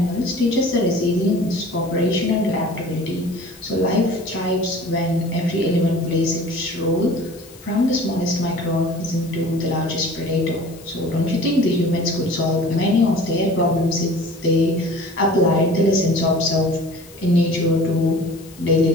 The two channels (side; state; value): left; noise; hiss, 23 dB below the sound